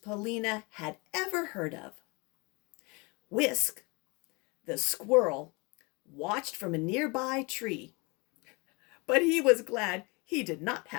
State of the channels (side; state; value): right; quieter; 28.3 dB